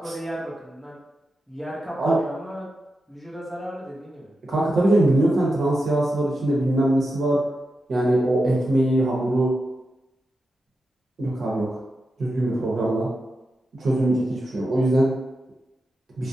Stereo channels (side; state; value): both; normal; correlation 0.89